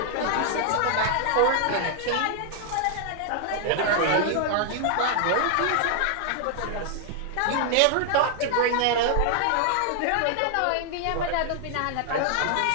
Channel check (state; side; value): different; both; correlation 0.00